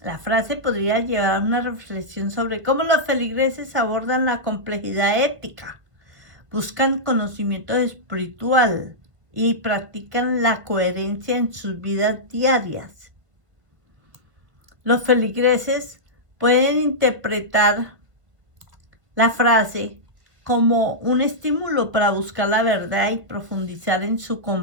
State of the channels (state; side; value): late; left; 1.3 ms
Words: La frase podría llevar a una reflexión sobre cómo los feligreses abordan la complejidad ética, buscan conocimiento espiritual y practican la coherencia en sus vidas diarias. Los feligreses pueden interpretar la frase como un estímulo para buscar la verdad y profundizar en su